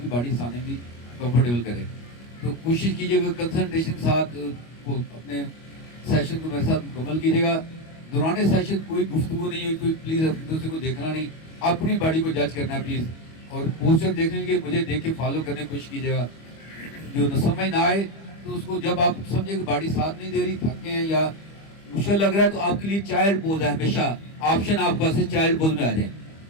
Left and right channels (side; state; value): right; late; 25 ms